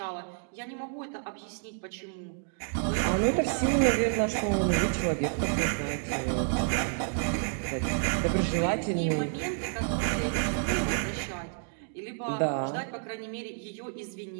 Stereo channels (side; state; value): left; silent; 58 dB below the other